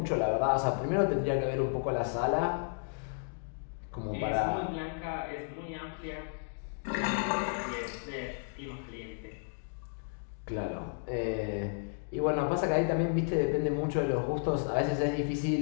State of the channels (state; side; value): silent; right; digital silence